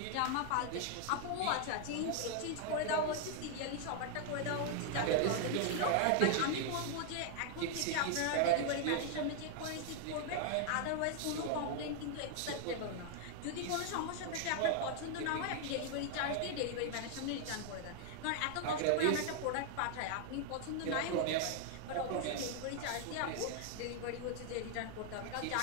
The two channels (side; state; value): both; different; correlation 0.00